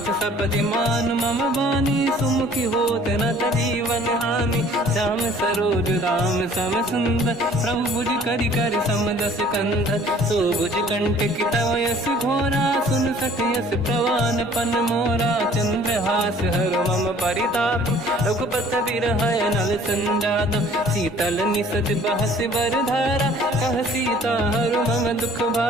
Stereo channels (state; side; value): normal; both; correlation 0.53